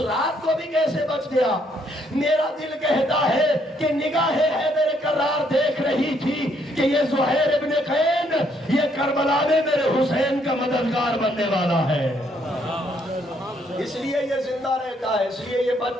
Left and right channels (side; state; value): both; normal; correlation 0.70